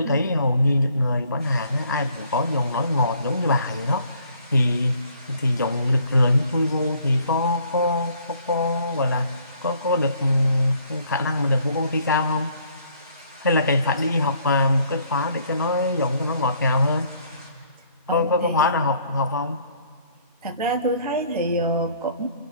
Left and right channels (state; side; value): inverted; both; correlation -0.62